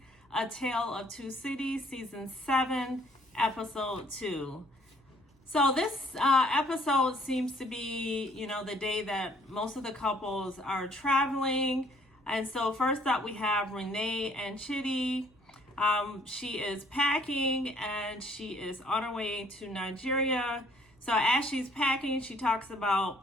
A Tale of Two Cities, Season 7, Episode 2. So this episode seems to be, the day that most of the couples are traveling. And so first up we have Renee and Chitty. She is packing and she is on her way to Nigeria. So as she's packing, she talks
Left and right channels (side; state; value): both; normal; correlation 0.62